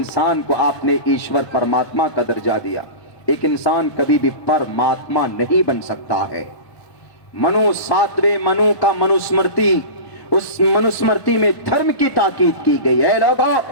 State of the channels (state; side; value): late; right; 1.0 ms